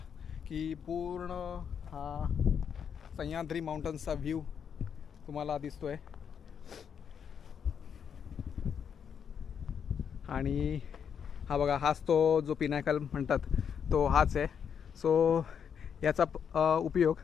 की पूर्ण हा सह्याद्री माउंटन्सचा व्ह्यू तुम्हाला दिसतोय. आणि हा बघा, हाच तो जो पिनाकल म्हणतात तो हाच आहे. सो याचा उपयोग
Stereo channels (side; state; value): right; quieter; 7.5 dB